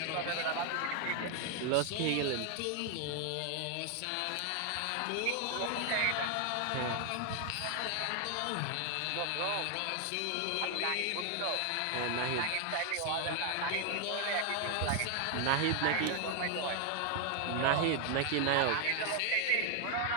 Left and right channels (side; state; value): both; different; correlation 0.00